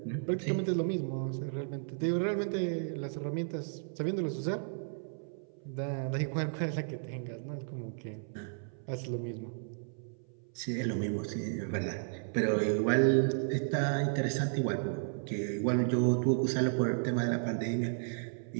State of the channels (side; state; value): left; silent; 55 dB below the other